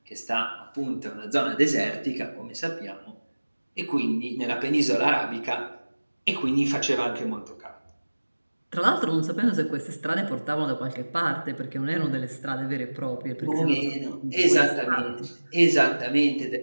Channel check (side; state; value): both; inverted; correlation -1.00